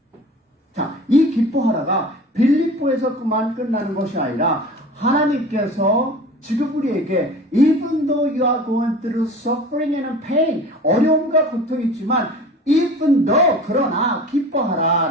자, 이 기뻐하라가 빌립보에서 그만 끝나는 것이 아니라 하나님께서 지금 우리에게 even though you are going through suffering and pain, 어려움과 고통이 있지만 even though, 그러나 기뻐하라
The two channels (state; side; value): normal; both; correlation 0.39